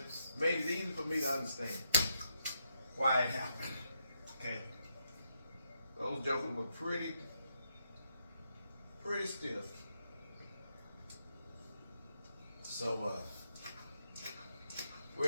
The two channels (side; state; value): both; inverted; correlation -0.81